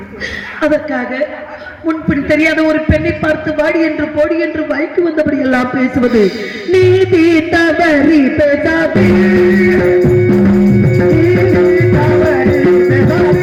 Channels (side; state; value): both; identical; correlation 1.00